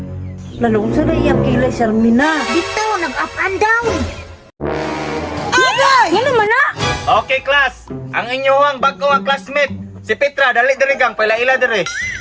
Lalong sa naiyak kilay, Sharmina. Dito, nag-up and down! Ano man na? Okay, class. Ang inyong bago ang classmate. Si Petra, dali dire gang, paila-ila dire.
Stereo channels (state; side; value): identical; both; correlation 1.00